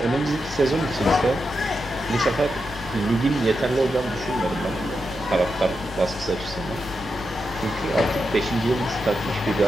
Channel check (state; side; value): normal; both; correlation 0.87